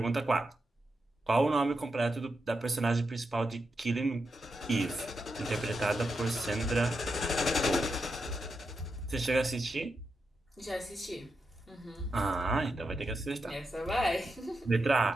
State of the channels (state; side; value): normal; both; correlation 0.86